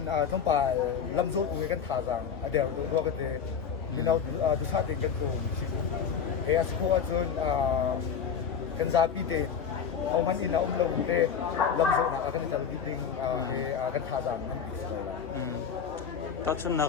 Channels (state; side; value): quieter; right; 6.9 dB